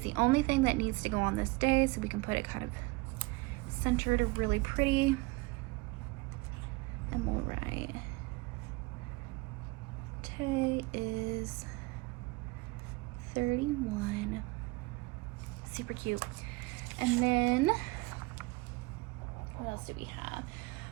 only thing that needs to go on this day, so we can put it kind of centered or really pretty. And we'll write, today is 31. Super cute. And then, what else do we have?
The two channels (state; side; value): quieter; left; 24.0 dB